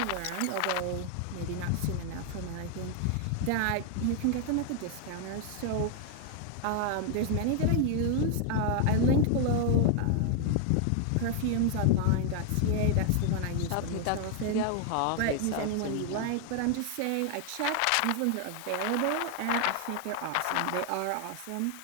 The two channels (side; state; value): both; different; correlation 0.00